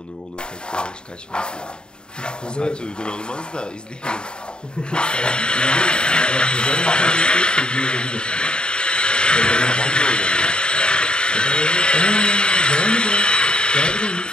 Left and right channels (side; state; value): right; late; 0.049 ms